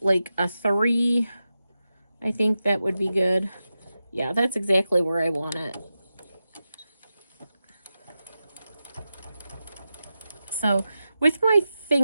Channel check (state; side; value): inverted; both; correlation -0.91